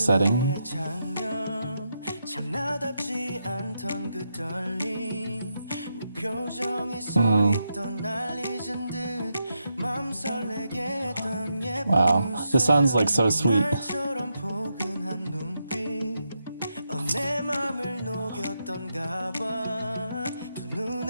Wow, this sounds like so sweet.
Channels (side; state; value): both; inverted; correlation -0.84